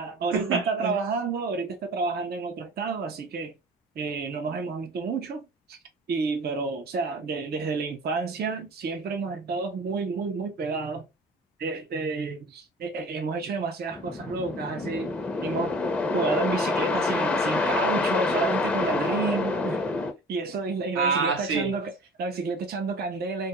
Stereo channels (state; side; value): normal; both; correlation 0.43